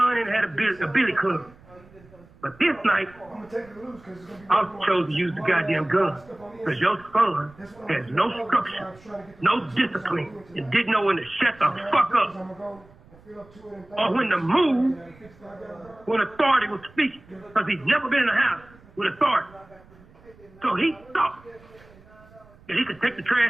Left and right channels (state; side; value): noise; right; rumble, 25 dB below the sound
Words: and he had a billy club. But this night, I chose to use the goddamn gun. Because your son has no structure, no discipline, and didn't know when to shut the fuck up. Or when to move when authority was speaking. Because he's never been in a house with authority. So he thought that he could take the